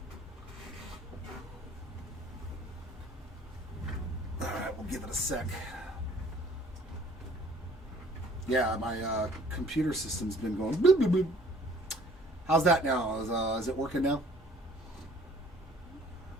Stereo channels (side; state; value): both; normal; correlation 0.55